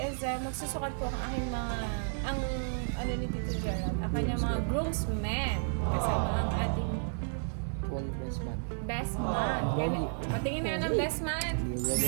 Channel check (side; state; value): left; silent; digital silence